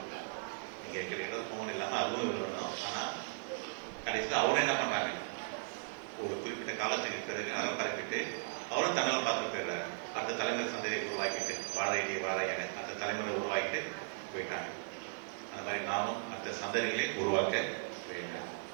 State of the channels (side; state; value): left; silent; digital silence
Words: நீங்க எங்களுக்கு போன் இல்லாம அதுவும் இருக்கணும். ஆனா கடைசியில் அவரும் என்ன பண்றாங்க, ஒரு குறிப்பிட்ட காலத்துக்கு பிறகு அறம் பரப்பிட்டு அவரும் தன்னால் பார்த்து போயிடுறாரு. அடுத்த தலைமுறை சந்தையை உருவாக்கிட்டு வாழை என அந்த தலைமுறை உருவாக்கிட்டு போயிட்டாங்க. அந்த மாதிரி நாமும் மற்ற சந்ததிகளை உருவாக்க வேண்டும்.